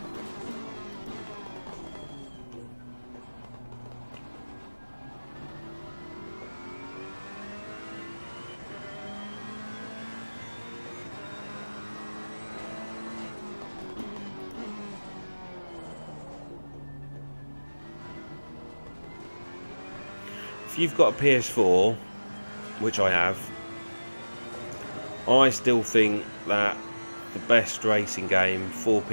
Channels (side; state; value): both; inverted; correlation -1.00